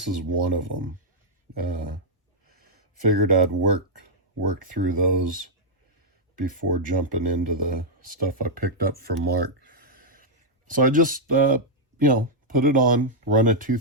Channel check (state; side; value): normal; both; correlation -0.06